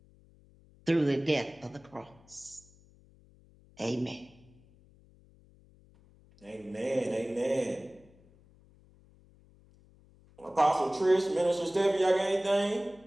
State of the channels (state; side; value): noise; left; hum, 28 dB below the sound